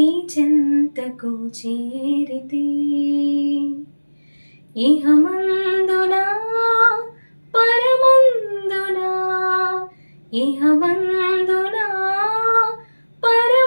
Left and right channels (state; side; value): inverted; both; correlation -1.00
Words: చెంతకు చేరితి ఇహమందునా పరమందునా ఇహమందునా